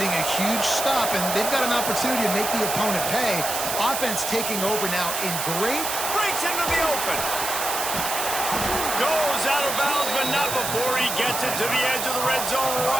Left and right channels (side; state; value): right; noise; hiss, 3 dB below the sound